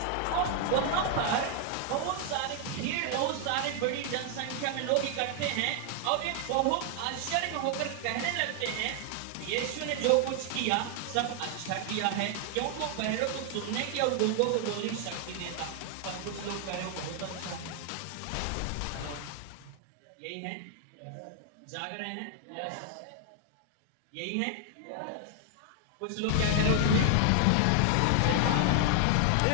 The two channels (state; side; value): different; both; correlation 0.00